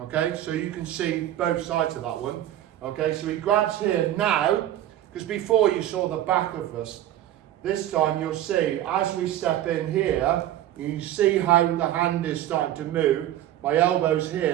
So you can see both sides of that one, okay? So he grabs here now, because before you saw the back of us. This time you'll see, as we step in here, you see how the hand is starting to move. My elbow's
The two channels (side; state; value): left; quieter; 12.8 dB